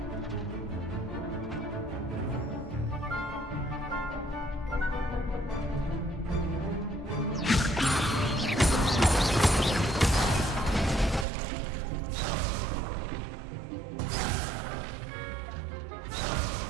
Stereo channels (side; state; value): left; drops out; at 11.2 s